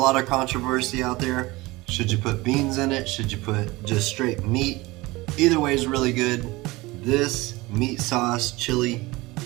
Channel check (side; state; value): left; quieter; 21.3 dB